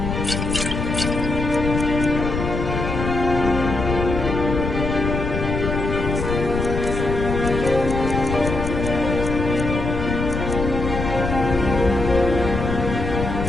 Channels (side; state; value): left; noise; rumble, 3 dB below the sound